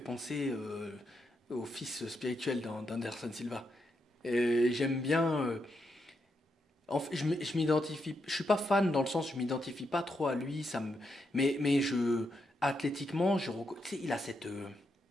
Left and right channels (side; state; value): both; normal; correlation 0.82